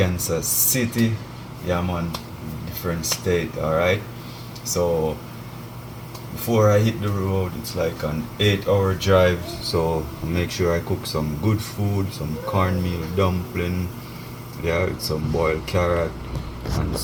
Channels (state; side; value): identical; both; correlation 1.00